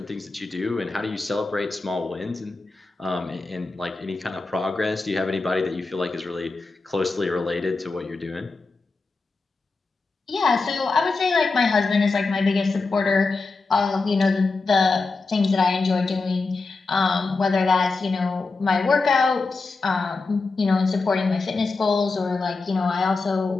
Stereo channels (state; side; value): quieter; right; 3.9 dB